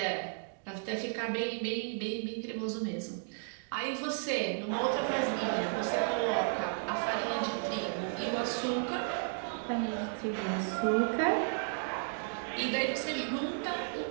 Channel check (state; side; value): silent; left; digital silence